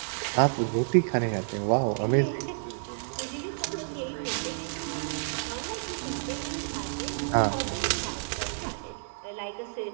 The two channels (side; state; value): left; silent; digital silence